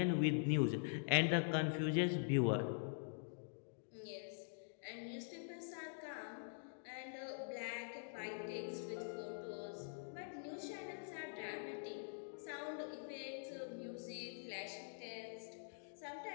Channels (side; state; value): right; silent; digital silence